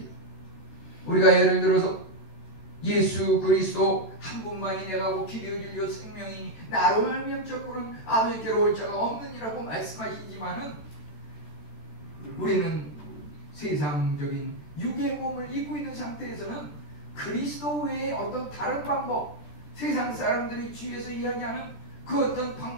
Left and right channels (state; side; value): late; right; 13 ms